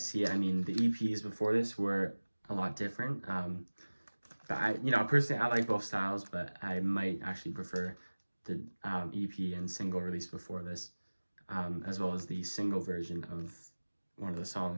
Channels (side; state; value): both; inverted; correlation -1.00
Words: it, I mean, the EPs before this were a lot different. But personally, I like both styles, but I might actually prefer the EP and single released before this, as well as the single version of one of the